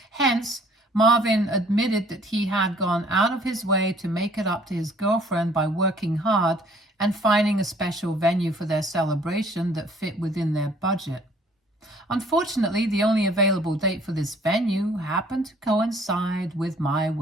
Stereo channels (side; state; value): both; normal; correlation 0.57